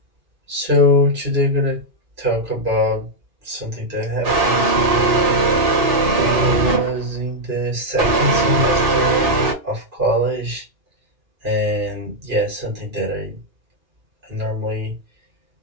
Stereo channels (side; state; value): left; late; 2.4 ms